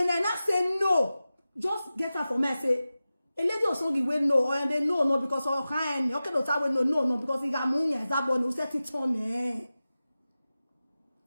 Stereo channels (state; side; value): inverted; both; correlation -0.95